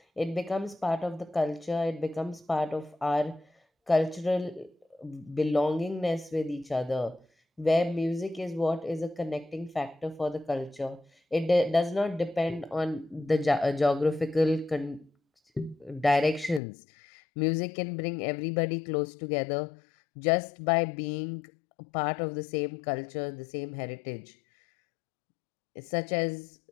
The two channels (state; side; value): drops out; right; at 16.6 s